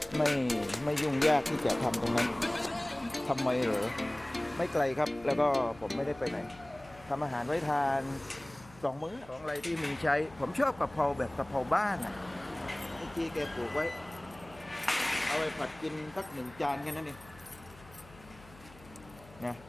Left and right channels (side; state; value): left; noise; hum, 22 dB below the sound